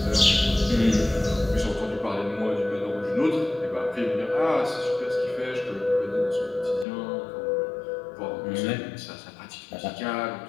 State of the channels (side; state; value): right; drops out; at 6.9 s